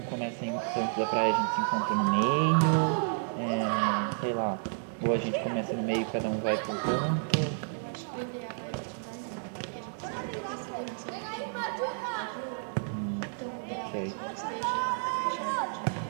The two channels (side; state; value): left; silent; digital silence